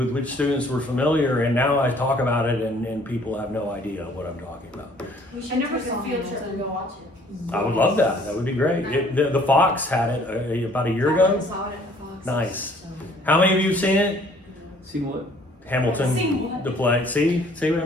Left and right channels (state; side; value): normal; both; correlation 0.58